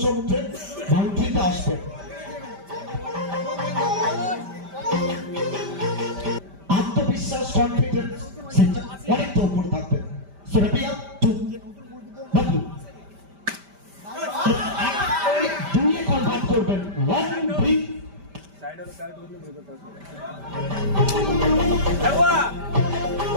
বাউন্ডারিতে আসবে। আত্মবিশ্বাস কনফিডেন্স সেটা অনেকটা উপরে থাকবে। সেরাপিয়া টু বাবু দুইয়ে কনভার্ট করবেন 1-3 साइड वाला कैरेट मतलब मुझे पता है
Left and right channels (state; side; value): late; left; 5.1 ms